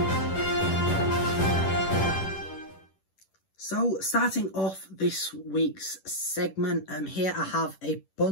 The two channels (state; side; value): late; right; 10 ms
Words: So starting off this week's segment, here I have a